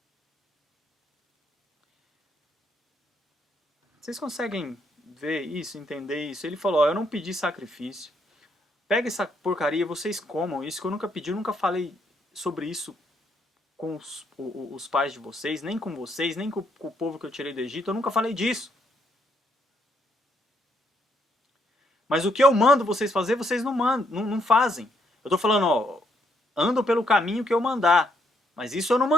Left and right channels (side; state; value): both; normal; correlation 0.73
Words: Vocês conseguem ver isso, entender isso? Ele falou, ó, eu não pedi sacrifício. Pega essa porcaria, vocês comam isso, que eu nunca pedi, eu nunca falei sobre isso com os pais de vocês, nem com vocês, nem com o povo que eu tirei do Egito, eu nunca falei disso. Mas o que eu mando vocês fazer, vocês não fazem. Eu estou falando, ó, andam pelo caminho que eu mandar. Mas isso eu não